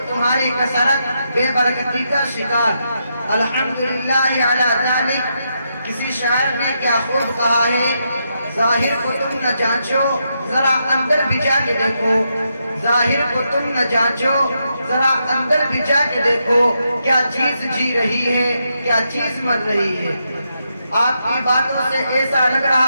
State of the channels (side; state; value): both; inverted; correlation -0.82